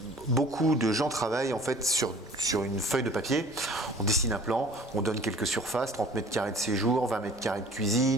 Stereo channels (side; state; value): both; normal; correlation 0.48